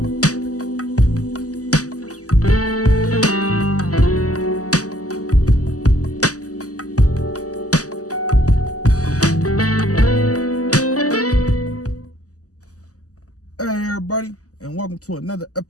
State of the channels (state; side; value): late; right; 0.67 ms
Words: and welcome to another